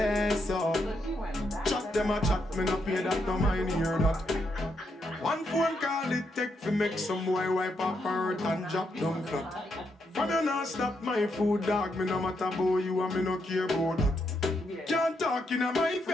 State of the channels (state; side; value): normal; both; correlation 0.79